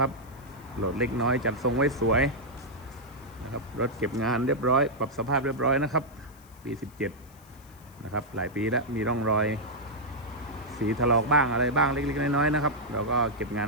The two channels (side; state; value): left; noise; hiss, 27 dB below the sound